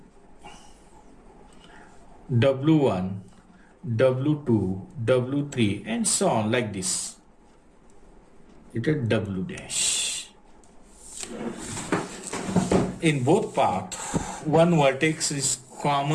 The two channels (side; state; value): both; identical; correlation 1.00